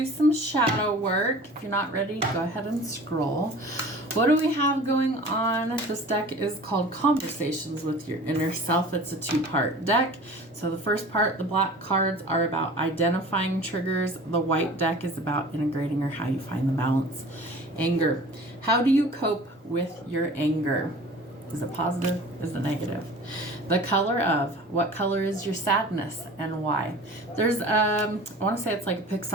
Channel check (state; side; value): normal; both; correlation 0.42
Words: some shadow work. If you're not ready, go ahead and scroll. What do we have going on? This deck is called Conversations with Your Inner Self. It's a two-part deck. So the first part, the black cards, are about identifying triggers. The white deck is about integrating or how you find the balance. Anger. How do you cope with your anger? Is it positive? Is it negative? The color of. What color is your sadness and why? There's, I want to say it's like a